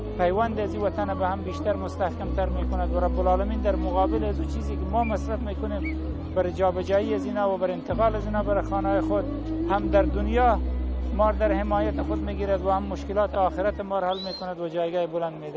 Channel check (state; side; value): identical; both; correlation 1.00